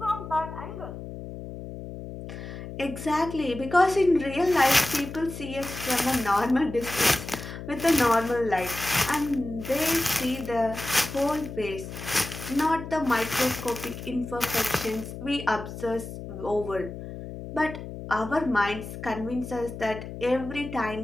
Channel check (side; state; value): left; noise; hum, 10 dB below the sound